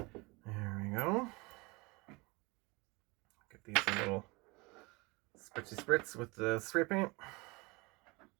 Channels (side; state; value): left; quieter; 25.8 dB